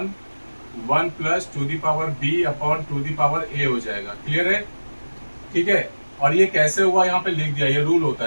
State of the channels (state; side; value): inverted; both; correlation -1.00